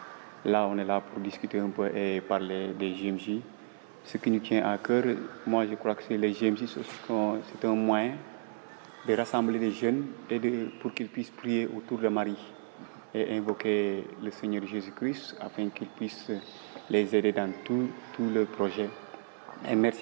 Là, on est là pour discuter un peu et parler des JMJ. Ce qui nous tient à cœur, moi je crois que c'est les JMJ, c'est un moyen de rassembler les jeunes et pour qu'ils puissent prier autour de Marie et invoquer le Seigneur Jésus-Christ afin qu'il puisse les aider dans tout le projet. Et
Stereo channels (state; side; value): silent; left; 56 dB below the other